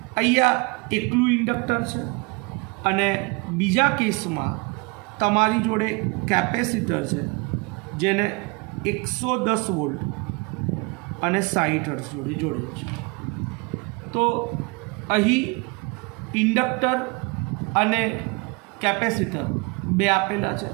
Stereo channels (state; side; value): quieter; left; 28.8 dB